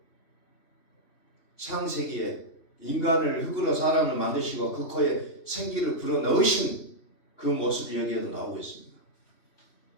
창세기에 인간을 흙으로 사람을 만드시고 그 코에 생기를 불어 넣으신 그 모습이 여기에도 나오고 있습니다.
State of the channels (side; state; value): right; late; 3.0 ms